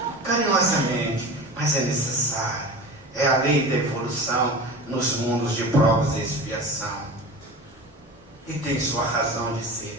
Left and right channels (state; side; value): normal; both; correlation 0.33